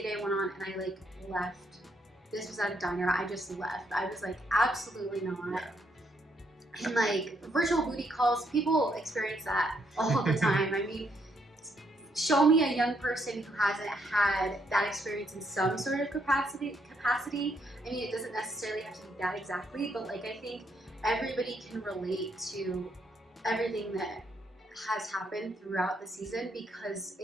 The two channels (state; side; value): normal; both; correlation 0.74